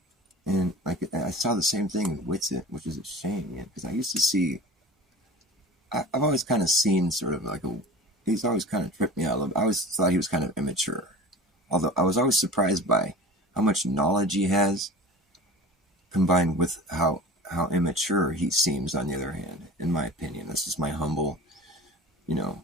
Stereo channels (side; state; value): both; normal; correlation 0.38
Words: And like I saw the same thing in Witsit, which is a shame, because I used to see. I've always kind of seen sort of like he's always kind of tripped me out. I always thought he was kind of immature. Although I was always surprised by how much knowledge he has, combined with how immature he seems. On the other hand, in my opinion, this is my humble, you know,